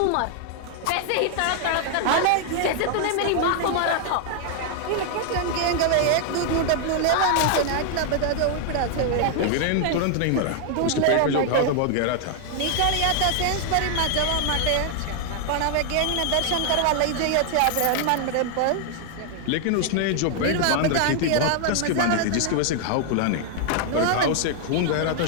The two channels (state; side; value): different; both; correlation 0.00